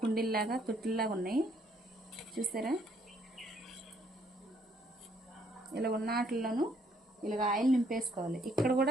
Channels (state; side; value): normal; both; correlation 0.68